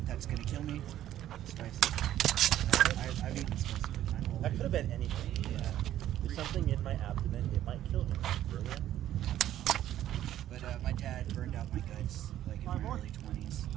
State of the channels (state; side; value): quieter; left; 12.3 dB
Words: that's gonna kill me. Spicy. I've eaten spicy my whole That life. could have been anything. Yeah. There's something in my abdomen, it might kill me. Brilliant. But my dad burned out my guts like in my early 20s